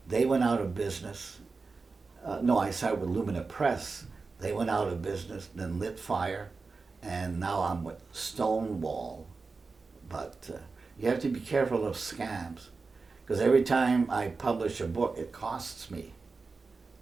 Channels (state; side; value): quieter; left; 4.2 dB